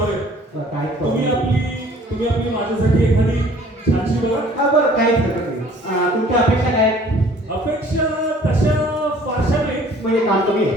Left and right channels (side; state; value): both; normal; correlation 0.54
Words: आहे. काय तुम्ही आपली माझ्यासाठी एखादी छानशी बघा. हा बरं काहीच हरकत नाही. तुमच्या अपेक्षा काय आहेत? अपेक्षा तशा फारशा नाही. म्हणजे काम तुम्ही